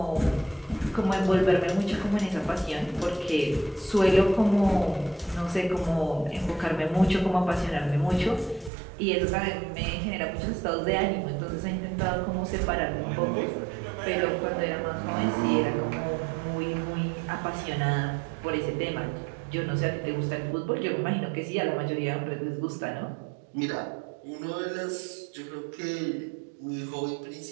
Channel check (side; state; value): left; drops out; at 8.7 s